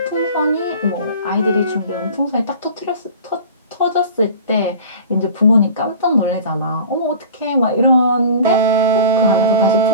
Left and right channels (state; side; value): inverted; both; correlation -0.40